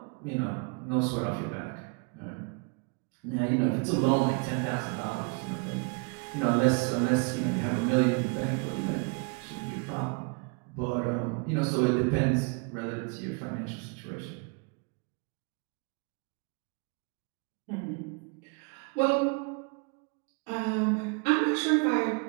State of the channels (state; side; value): quieter; left; 34.4 dB